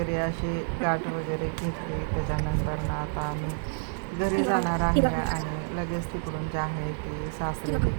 अशी गाठ वगैरे घेतली. त्याच्यानंतर आता आम्ही घरी जाणार आहे आणि लगेच तिकडून जे आहे ती सासरी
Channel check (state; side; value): silent; left; 59 dB below the other